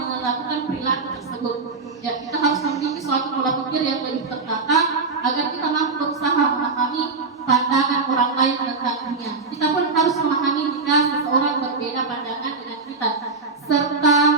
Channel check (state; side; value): quieter; left; 4.2 dB